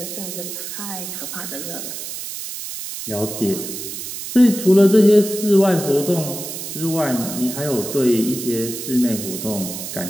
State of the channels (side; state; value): right; noise; hiss, 8 dB below the sound